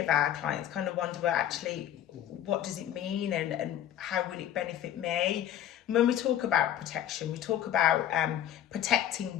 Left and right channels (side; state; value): right; quieter; 11.1 dB